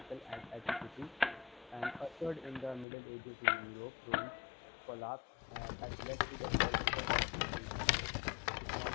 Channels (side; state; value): right; drops out; at 2.9 s